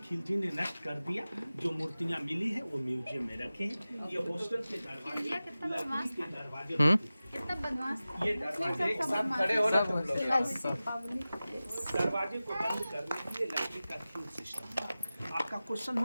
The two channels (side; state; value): both; inverted; correlation -0.96